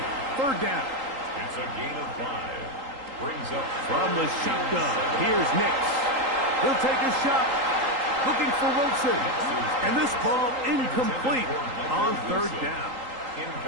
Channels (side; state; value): left; late; 3.8 ms